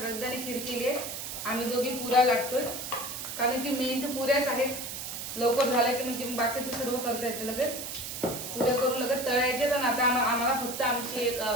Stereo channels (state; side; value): noise; right; hiss, 7 dB below the sound